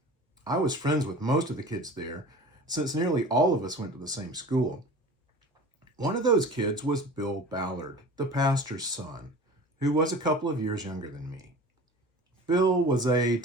I was friends with most of the kids there, since nearly all of us went to the same school. One of those kids was Bill Ballard, the pastor's son, who was a couple of years younger than me. Bill was a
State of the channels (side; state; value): both; normal; correlation 0.39